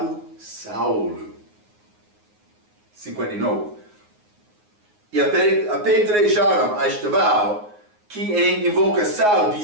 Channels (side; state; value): left; late; 9.6 ms